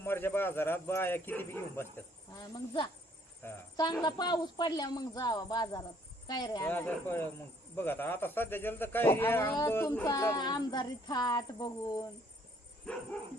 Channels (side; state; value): both; normal; correlation 0.63